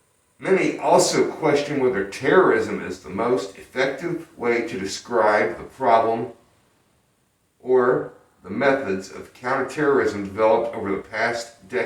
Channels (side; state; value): both; identical; correlation 1.00